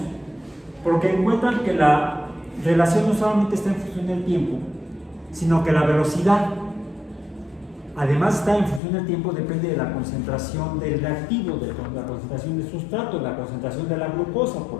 porque encuentran que la relación no solamente está en función del tiempo, sino que la velocidad, además está en función del tiempo, depende de la concentración del reactivo, de la concentración del sustrato, de la concentración de la glucosa,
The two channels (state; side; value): drops out; right; at 8.8 s